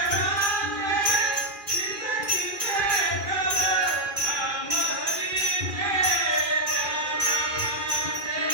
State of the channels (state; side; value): late; left; 2.4 ms